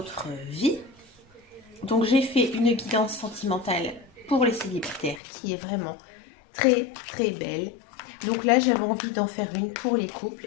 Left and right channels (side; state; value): right; drops out; at 5.2 s